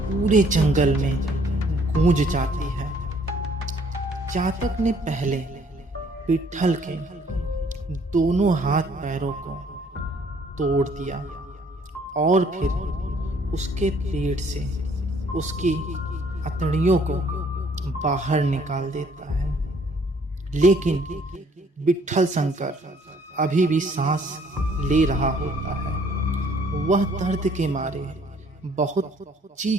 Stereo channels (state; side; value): normal; both; correlation 0.61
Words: पूरे जंगल में गूंज जाती है। जातक ने पहले विट्ठल के दोनों हाथ पैरों को तोड़ दिया और फिर उसके पेट से उसकी अतड़ियों को बाहर निकाल देता है, लेकिन विट्ठल शंकर अभी भी सांस ले रहा होता है। वह दर्द के मारे बहुत